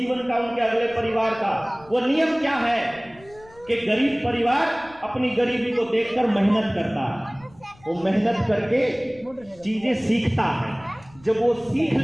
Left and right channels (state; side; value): noise; left; rumble, 25 dB below the sound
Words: का, उनके अगले परिवार का। वो नियम क्या है कि गरीब परिवार अपनी गरीबी को देखकर मेहनत करता है, वो मेहनत करके चीजें सीखता है। जब वो सीख